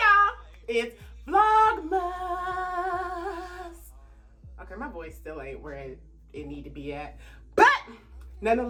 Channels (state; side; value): identical; both; correlation 1.00